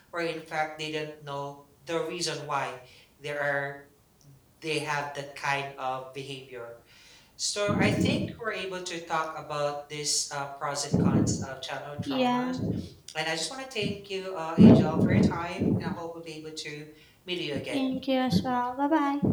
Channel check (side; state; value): both; identical; correlation 1.00